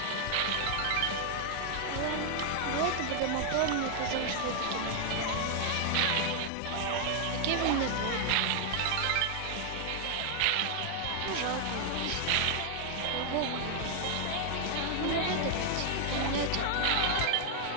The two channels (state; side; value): different; both; correlation 0.00